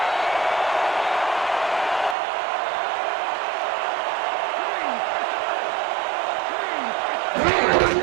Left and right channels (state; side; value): drops out; left; at 2.1 s